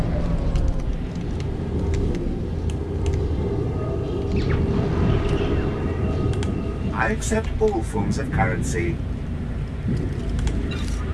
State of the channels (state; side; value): identical; both; correlation 1.00